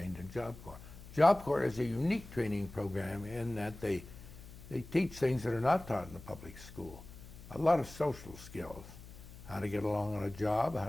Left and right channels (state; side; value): noise; left; hum, 16 dB below the sound